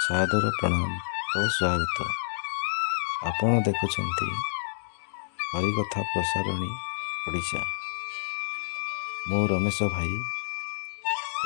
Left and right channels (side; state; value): right; silent; 59 dB below the other